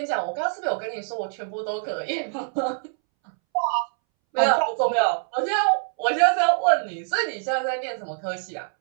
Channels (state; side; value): silent; left; 62 dB below the other